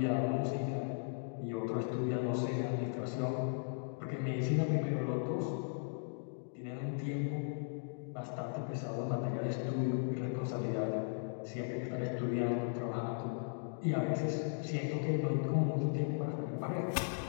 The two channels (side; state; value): right; silent; digital silence